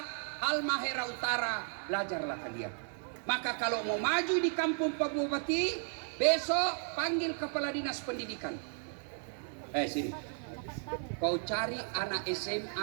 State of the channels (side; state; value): left; silent; 55 dB below the other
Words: Halmahera Utara, belajarlah kalian. Maka kalau mau maju di kampung Pak Bupati, besok panggil kepala dinas pendidikan. Sini. Kau cari anak